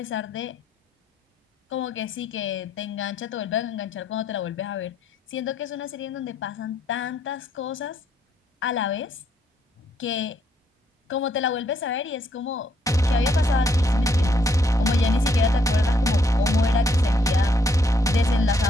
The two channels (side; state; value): both; normal; correlation 0.72